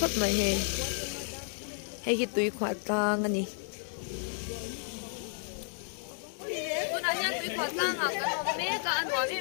mai he hi tui khwa tang ani tuna hian tui khwa tang a kan om me ka anwa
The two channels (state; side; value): silent; right; digital silence